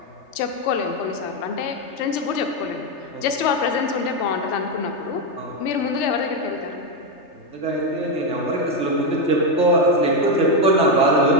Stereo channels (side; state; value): right; late; 3.3 ms